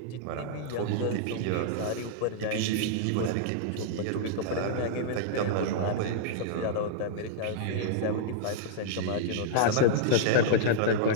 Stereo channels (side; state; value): both; different; correlation -0.02